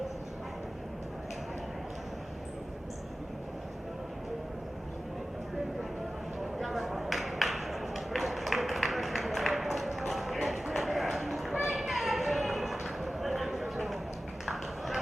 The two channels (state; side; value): normal; both; correlation 0.95